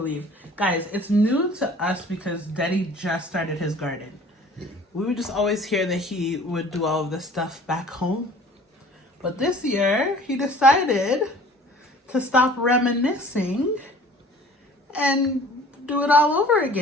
Guys, it's new to us because Deddy just started his garden. Yeah. We would just always hear that he would do all of this stuff back home. But this year, he decided to stop reminiscing and do it all over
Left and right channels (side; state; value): both; normal; correlation 0.48